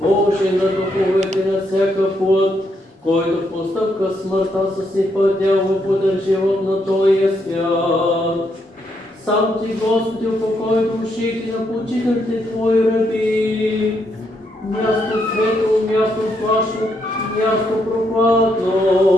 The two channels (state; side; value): normal; both; correlation 0.77